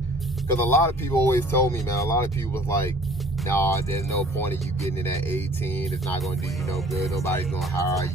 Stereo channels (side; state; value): both; normal; correlation 0.51